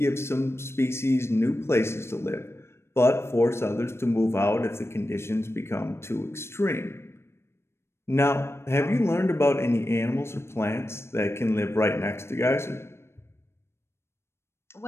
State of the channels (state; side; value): late; right; 0.12 ms